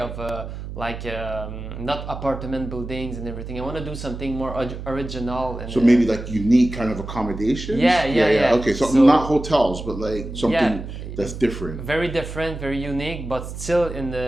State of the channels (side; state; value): right; noise; hum, 9 dB below the sound